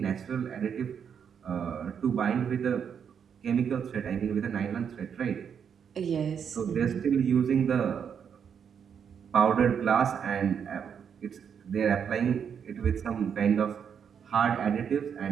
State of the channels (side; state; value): left; quieter; 7.5 dB